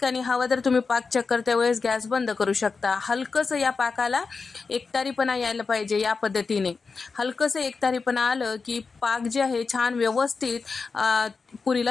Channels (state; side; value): quieter; right; 4.7 dB